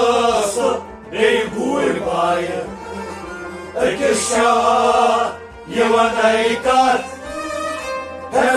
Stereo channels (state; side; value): identical; both; correlation 1.00